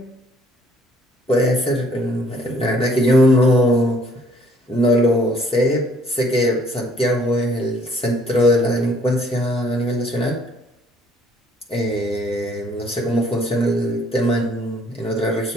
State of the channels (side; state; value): both; normal; correlation 0.61